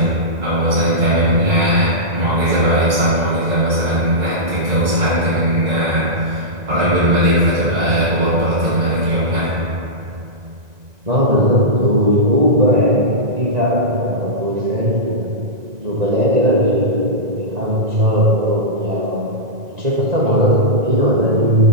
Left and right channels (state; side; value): late; left; 2.0 ms